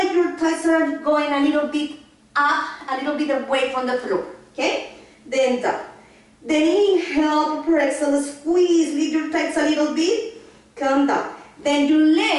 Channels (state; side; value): identical; both; correlation 1.00